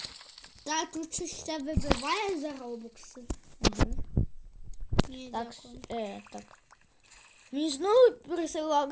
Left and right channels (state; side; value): identical; both; correlation 1.00